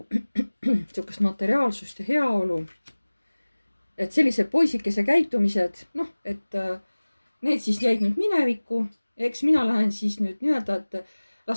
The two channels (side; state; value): both; inverted; correlation -1.00